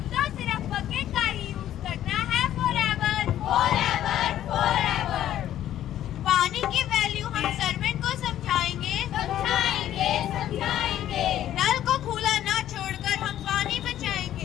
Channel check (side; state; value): right; quieter; 12.0 dB